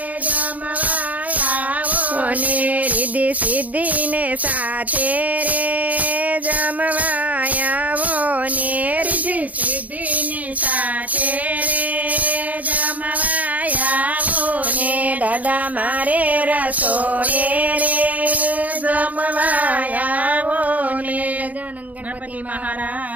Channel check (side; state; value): left; late; 0.076 ms